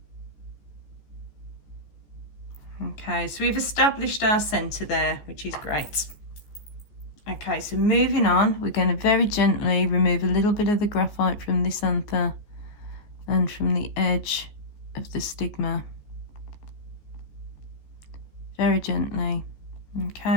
Okay, so we've established our centre there, which is great. Okay, so moving on, we're going to very gently remove a little bit of the graphite from this anther and from the edge of the stigma. Very gently.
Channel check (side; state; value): right; late; 14 ms